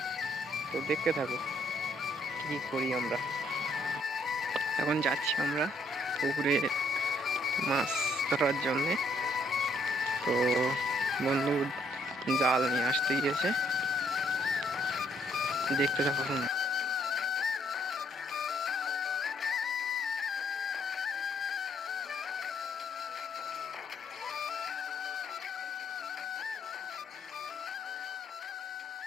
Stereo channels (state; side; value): normal; both; correlation 0.69